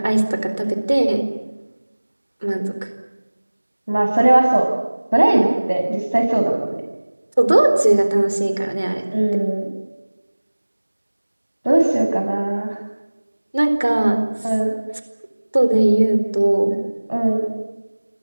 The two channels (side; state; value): both; inverted; correlation -1.00